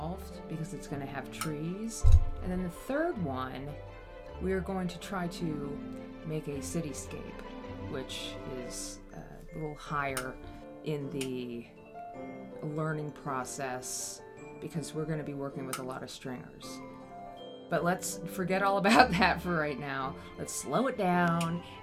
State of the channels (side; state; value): both; identical; correlation 1.00